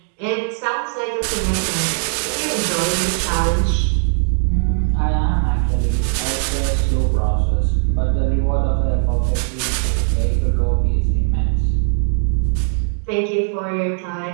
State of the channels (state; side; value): silent; left; 67 dB below the other